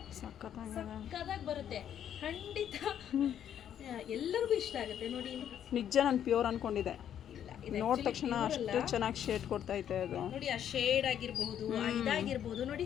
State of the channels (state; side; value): quieter; right; 9.8 dB